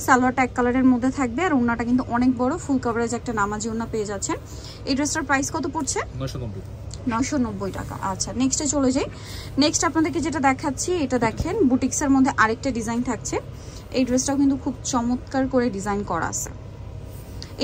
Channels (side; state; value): both; identical; correlation 1.00